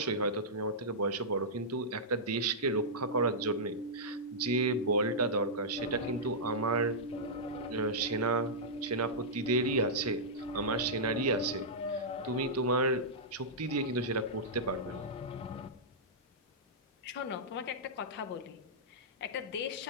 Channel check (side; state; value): both; normal; correlation -0.12